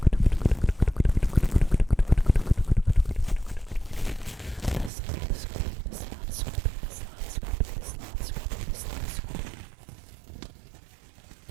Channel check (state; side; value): drops out; left; at 4.9 s